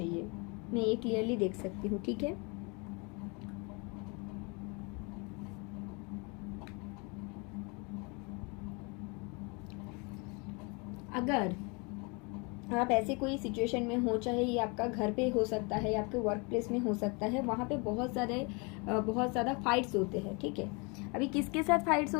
मैं ये क्लियरली देख सकती हूँ। ठीक है, अगर आप ऐसे कोई सिचुएशन में हो, चाहे ये आपका घर पे हो सकता है या आपके वर्क प्लेस में हो सकता है, वहाँ पे बहुत ज़्यादा फाइट्स होते हैं। ठीक है, अभी किसके साथ फाइट्स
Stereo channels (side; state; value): right; quieter; 30.8 dB